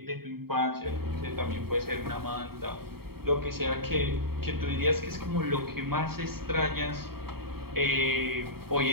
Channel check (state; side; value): late; left; 0.95 ms